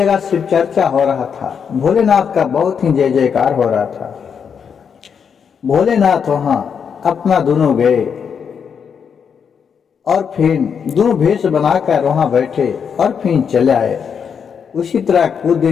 शिव चर्चा हो रहा था। भोलेनाथ का बहुत ही जय जयकार हो रहा था। भोलेनाथ वहां अपना दोनों गए और फिर दोनों भेष बनाकर वहां बैठे और फिर चले आए। उसी तरह कुछ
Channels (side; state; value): right; quieter; 6.9 dB